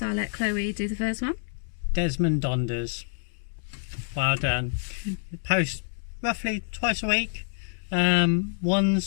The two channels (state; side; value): silent; right; 60 dB below the other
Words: I'll let Chloe do the first one. Desmond Donders. Well done. Post roughly twice a week.